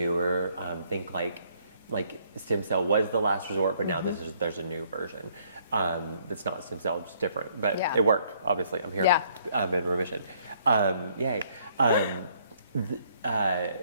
Think like stem cell was the last resort, but now there's a new version. It's not stem cell, just different, but Yeah. it worked. Obviously, I'm here. Yeah. I'm in remission. Yay.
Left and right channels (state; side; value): inverted; both; correlation -0.66